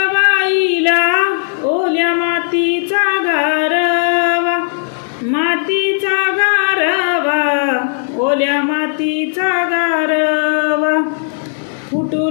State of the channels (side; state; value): right; silent; digital silence